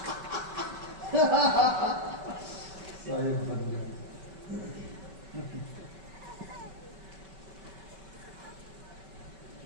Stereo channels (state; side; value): late; left; 5.2 ms